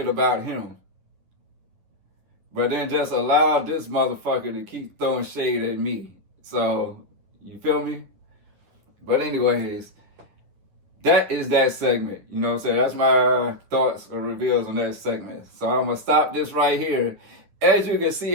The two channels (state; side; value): late; left; 10 ms